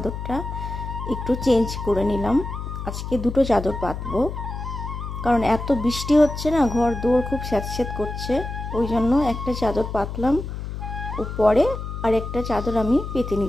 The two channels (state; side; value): noise; left; hum, 7 dB below the sound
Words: একটু চেঞ্জ করে নিলাম। আজকে দুটো চাদর পাতবো, কারণ এত বৃষ্টি হচ্ছে না, ঘর দৌড় খুব স্যাঁতস্যাঁত করছে। ওই জন্য একটা চাদর পাতলাম, ও পরে আরেকটা চাদর আমি পেতে